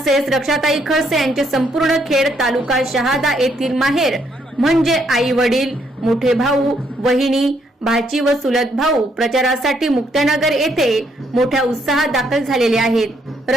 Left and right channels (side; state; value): both; normal; correlation 0.72